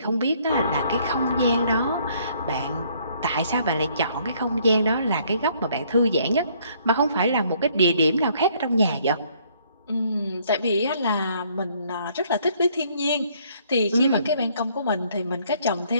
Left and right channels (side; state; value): both; inverted; correlation -0.64